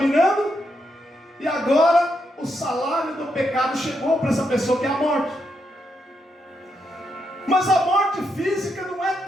E agora o salário do pecado chegou para essa pessoa, que é a morte. Mas a morte física não é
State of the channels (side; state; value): both; normal; correlation 0.81